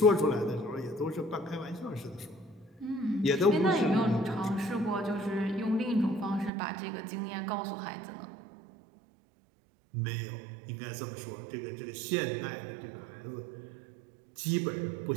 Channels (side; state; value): left; drops out; at 6.5 s